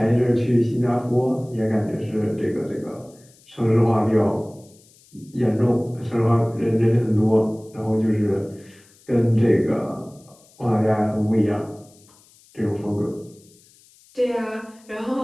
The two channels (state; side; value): noise; left; hiss, 28 dB below the sound